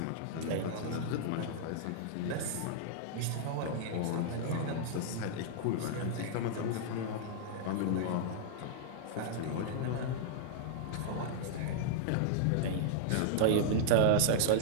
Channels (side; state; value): both; different; correlation -0.01